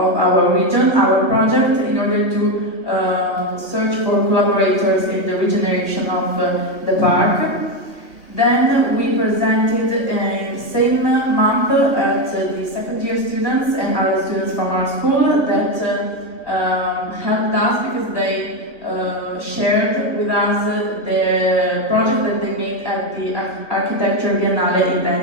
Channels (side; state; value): right; late; 2.4 ms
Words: our region, our project, in order to search for collaborators in the regeneration of the park. Then we presented in the same month at the second-year students and other students from our school that helped us because they shared with us the project that they made at the Architecture Biennale in